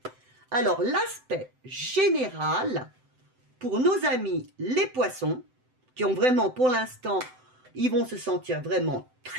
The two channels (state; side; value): late; left; 7.8 ms